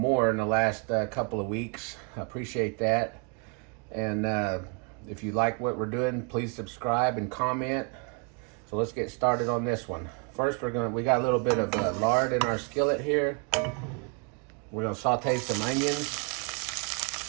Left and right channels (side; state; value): left; quieter; 35.5 dB